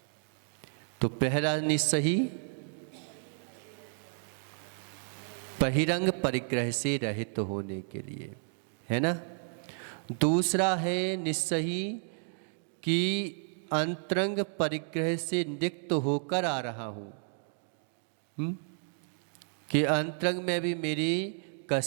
तो पहला निस्सही बहिरंग परिग्रह से रहित होने के लिए, है ना। दूसरा है निस्सही कि अंतरंग परिग्रह से निक्त होकर आ रहा हूँ, कि अंतरंग में भी मेरी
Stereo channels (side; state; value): left; silent; 56 dB below the other